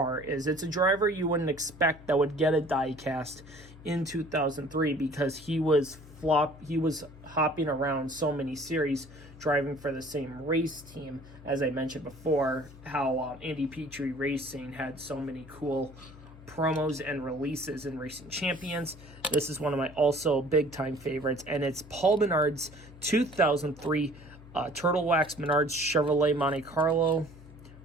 is. It's a driver you wouldn't expect that would get a Diecast in 2003 because he was hopping around so many series, driving for the same race team. As I mentioned before, how Andy Petree Racing had so many cool promos and releases in Racing Champions. This is one of my also big-time favorites, and it's Paul Menard's 2003 Turtle Wax Menards Chevrolet Monte Carlo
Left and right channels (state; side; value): noise; left; hum, 19 dB below the sound